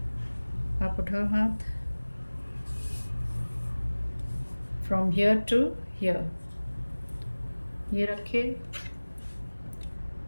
आप उठाओ हाथ, फ्रॉम हियर टू हियर, ये रखे,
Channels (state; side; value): inverted; both; correlation -1.00